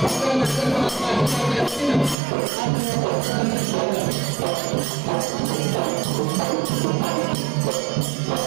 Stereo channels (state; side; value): drops out; left; at 2.1 s